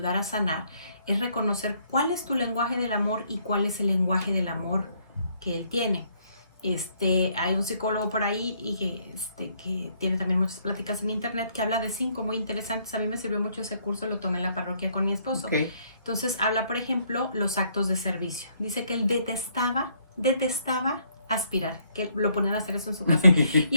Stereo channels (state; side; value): inverted; both; correlation -0.69